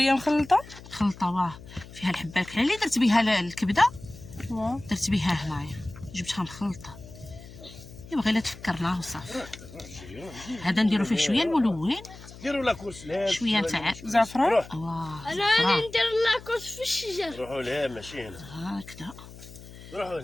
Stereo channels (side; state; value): left; noise; hum, 17 dB below the sound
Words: مخلطه. خلطه واه فيها الحبه الكحله اللي درت بها الكبده، واه درت بها هنايا جبتها مخلطه. ايوا غير لا تفكرناه وصافي. هذا نديرو فيه شويه الملون، ديروا لا كورس شويه نتاع زعفران. واه انا زعفران. ندير لاكوس في الشجر. روحوا لها ماشي هنا. هكذا روحوا